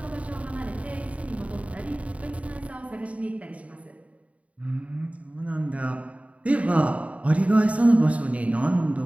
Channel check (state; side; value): late; left; 0.066 ms